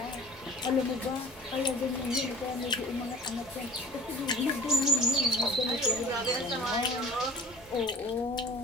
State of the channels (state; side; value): normal; both; correlation 0.44